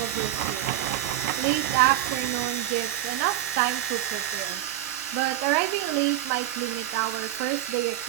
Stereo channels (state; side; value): quieter; left; 13.3 dB